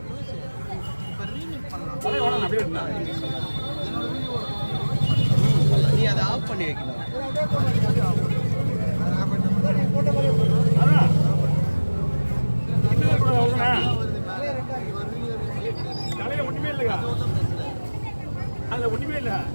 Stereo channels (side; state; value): both; inverted; correlation -1.00